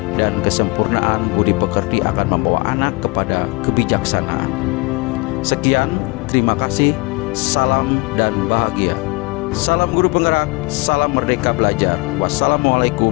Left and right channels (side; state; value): right; quieter; 26.2 dB